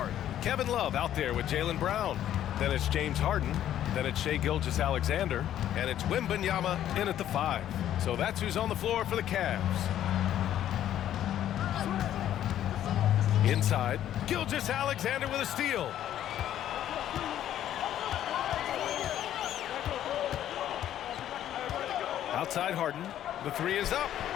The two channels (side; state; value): right; quieter; 11.4 dB